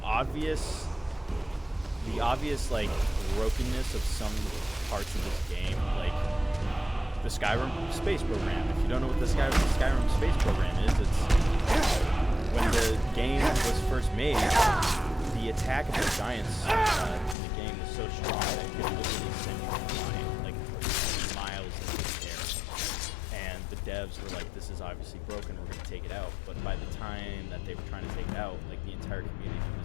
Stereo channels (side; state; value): right; drops out; at 17.4 s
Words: obvious like brokenness of some parts of this game, like the Skyrim space program. If you don't know what the Skyrim space program is, it's when the game was first made. The attack of the giants in the game was so strong that it could literally send you flying like miles into the air. And the devs were like, this is obviously broken, we're going to take it out. But by the time that they were trying to take it out, like the entire community